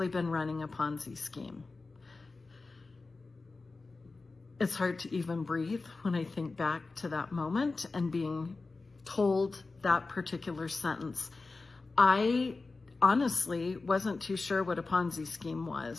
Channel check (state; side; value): quieter; right; 3.7 dB